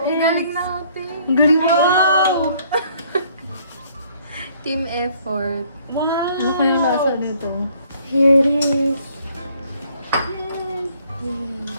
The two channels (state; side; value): inverted; both; correlation -0.62